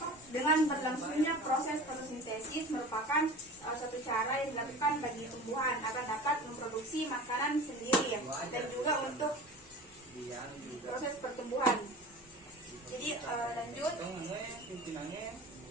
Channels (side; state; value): both; normal; correlation 0.37